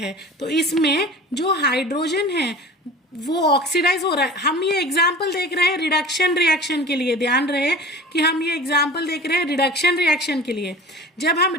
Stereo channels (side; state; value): both; normal; correlation 0.39